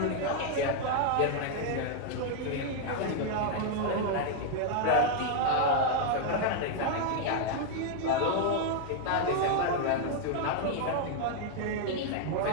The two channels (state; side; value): different; both; correlation 0.00